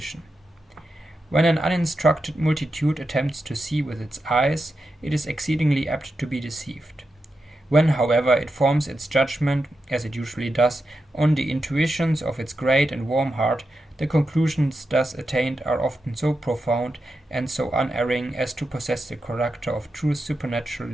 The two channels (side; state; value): both; normal; correlation 0.88